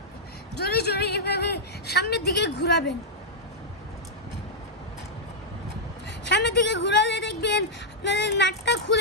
জোরে জোরে এভাবে সামনের দিকে ঘোরাবেন। সামনের দিকে ঘোরালে দেখবেন আপনাদের নাটটা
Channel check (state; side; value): normal; both; correlation -0.07